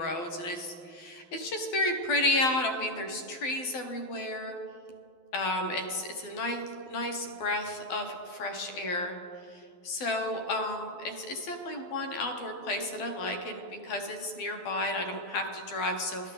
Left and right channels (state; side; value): late; right; 12 ms